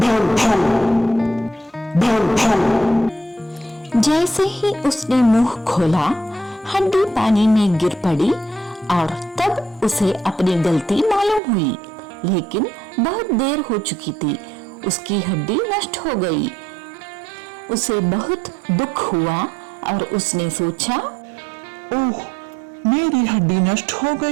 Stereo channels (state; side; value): drops out; left; at 11.4 s